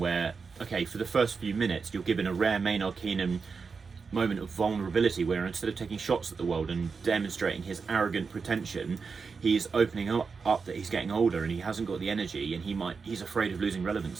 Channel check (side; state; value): left; quieter; 5.1 dB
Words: okay, for the first few minutes, you're given a rare Maynard Keenan moment of vulnerability where instead of taking shots at the world and demonstrating his arrogant pretension, he's opening up that he's getting older and he hasn't got the energy and he's afraid of losing